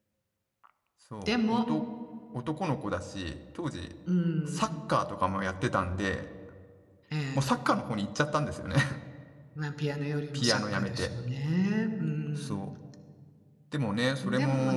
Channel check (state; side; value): identical; both; correlation 1.00